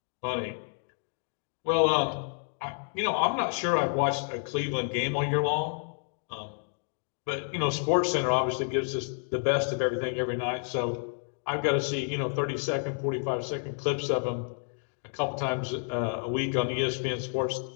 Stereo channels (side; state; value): right; silent; 55 dB below the other